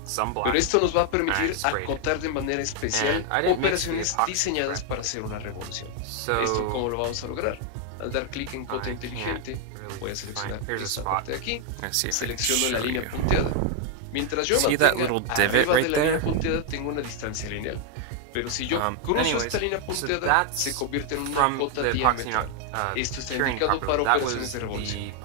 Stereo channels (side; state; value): both; different; correlation 0.00